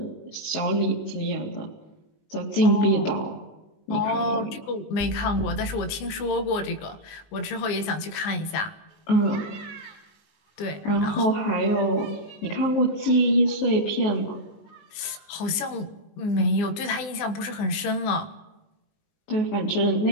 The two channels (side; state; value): right; late; 19 ms